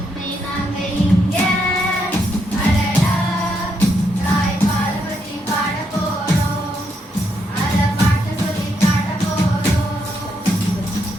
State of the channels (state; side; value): normal; both; correlation 0.78